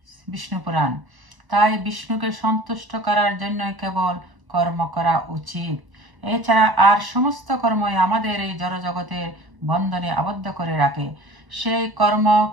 বিষ্ণু পুরাণ। তাই বিষ্ণুকে সন্তুষ্ট করার জন্য কেবল কর্ম করা উচিত। এছাড়া আর সমস্ত কর্মই আমাদের এই জড়জগতের বন্ধনে আবদ্ধ করে রাখে। সেই কর্ম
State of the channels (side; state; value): left; late; 1.0 ms